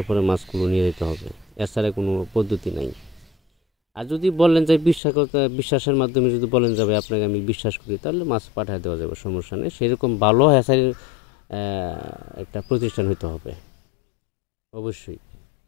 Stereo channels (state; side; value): drops out; right; at 5.0 s